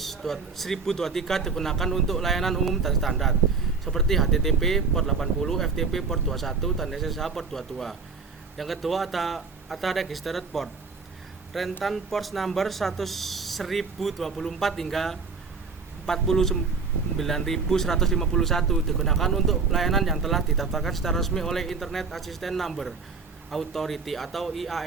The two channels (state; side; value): quieter; left; 4.8 dB